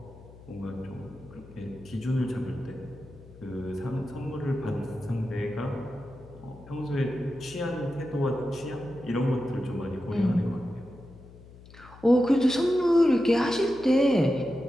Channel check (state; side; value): noise; left; hum, 20 dB below the sound